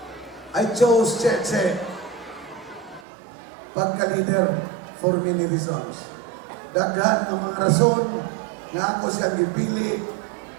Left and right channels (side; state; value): left; drops out; at 3.1 s